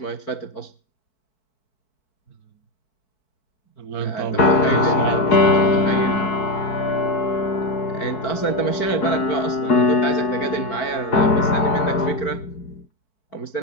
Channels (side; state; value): right; late; 4.7 ms